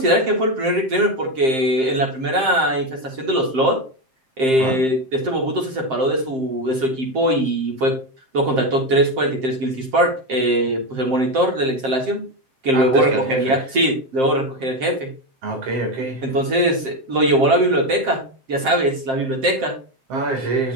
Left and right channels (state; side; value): late; left; 7.6 ms